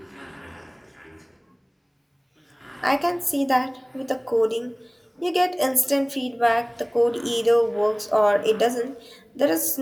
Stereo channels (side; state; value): both; identical; correlation 1.00